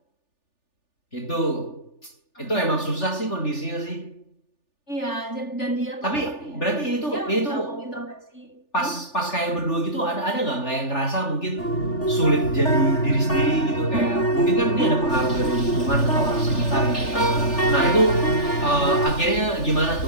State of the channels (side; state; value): right; late; 3.4 ms